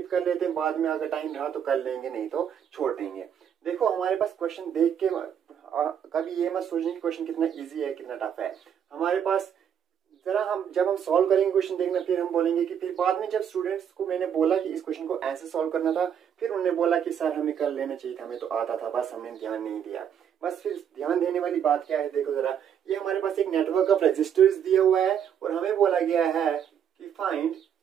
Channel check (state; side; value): quieter; left; 8.6 dB